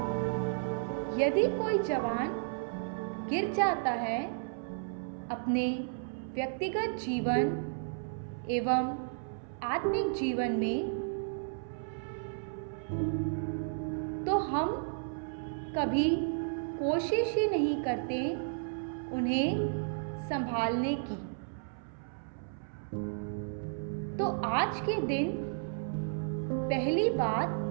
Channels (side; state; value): left; silent; 56 dB below the other